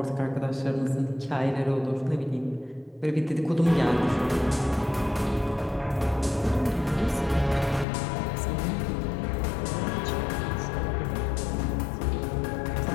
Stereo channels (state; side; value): drops out; right; at 7.9 s